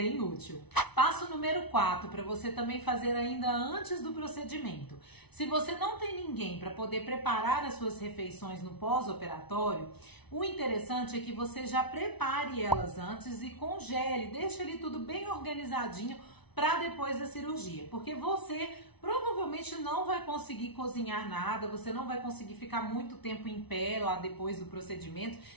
útil. Passo número 4, para você também fazer ainda antes do procedimento. Se você não tem ninguém para poder preparar as suas refeições no pós-operatório, o interessante é que você já prepare elas antes e congele, deixe ali tudo bem organizadinho para depois da cirurgia, porque você provavelmente não vai conseguir cozinhar nada, você não vai conseguir ficar muito tempo em pé lá depois do procedimento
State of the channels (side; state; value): right; late; 0.99 ms